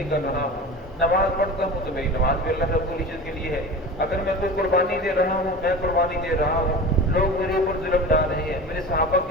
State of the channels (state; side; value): normal; both; correlation 0.33